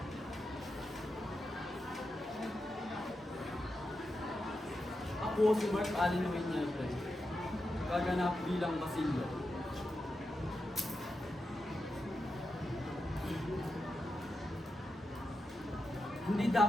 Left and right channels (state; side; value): normal; both; correlation 0.88